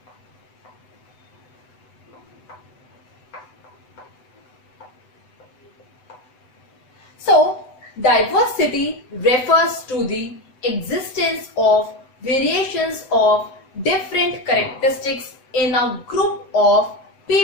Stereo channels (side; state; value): right; late; 7.9 ms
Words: So diversity refers to the existence of variations of different characteristics in a group of